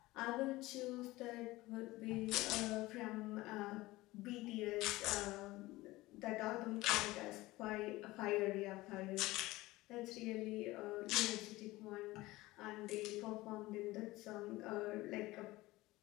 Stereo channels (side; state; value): right; quieter; 19.2 dB